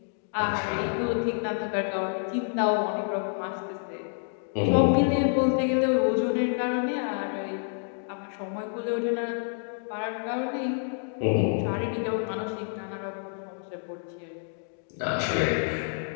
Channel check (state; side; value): silent; right; 59 dB below the other